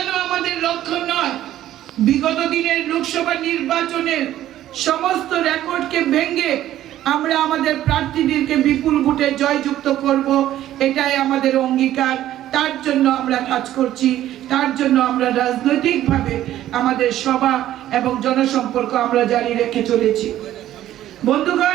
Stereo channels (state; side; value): quieter; left; 13.0 dB